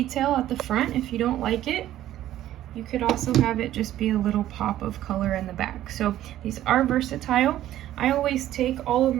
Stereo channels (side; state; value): left; quieter; 13.1 dB